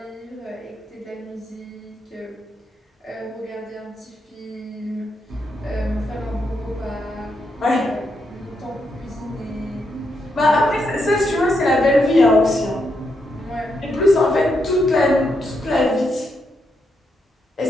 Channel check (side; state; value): both; normal; correlation 0.81